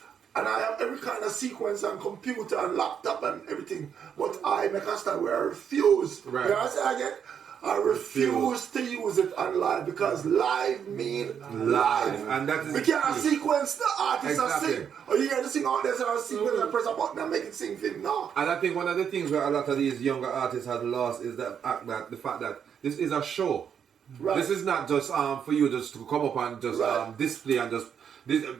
and I have every kind of sequence and computer and laptop and everything. But I make a stand where I refuse. Right. You know what I say again? I refuse to use it on live because live mean live. And that is we can't sequence the artist Exactly. and sing. Or you hear the sing out there and sequence and press a button and make it sing thing. No. And I think one of the things where a lot of these younger artists have lost is the fact that this is a show. Right. This is not just for you just to come up and just Right. display and just. This,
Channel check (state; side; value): quieter; left; 7.9 dB